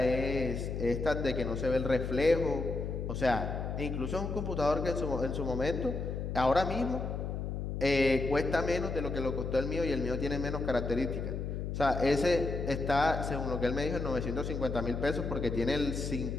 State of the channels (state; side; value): noise; left; hum, 4 dB below the sound